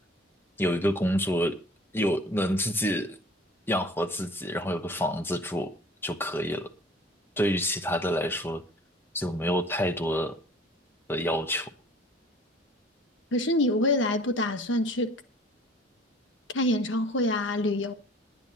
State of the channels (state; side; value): normal; both; correlation 0.49